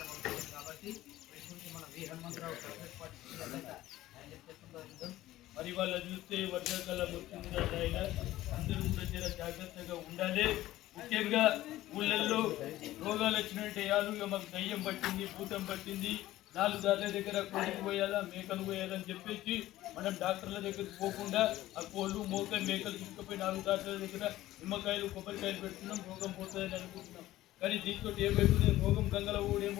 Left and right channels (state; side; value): quieter; right; 15.5 dB